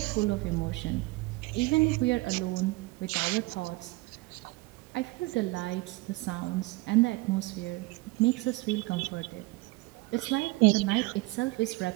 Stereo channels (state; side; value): quieter; left; 22.6 dB